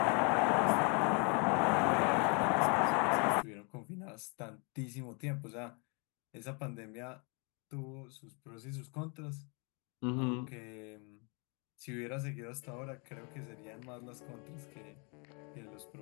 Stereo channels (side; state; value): right; quieter; 34.0 dB